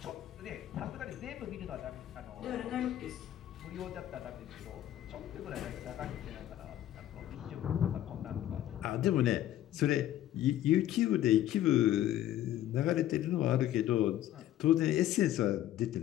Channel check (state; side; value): quieter; right; 12.8 dB